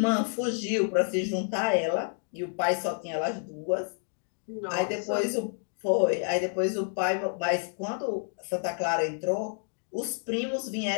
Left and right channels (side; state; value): right; silent; 58 dB below the other